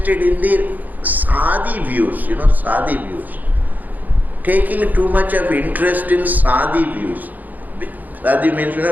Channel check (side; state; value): left; late; 0.082 ms